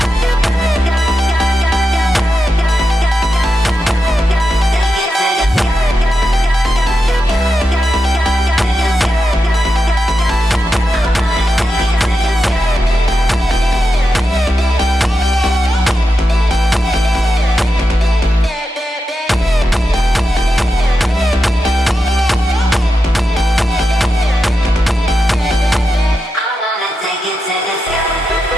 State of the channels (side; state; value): both; normal; correlation 0.88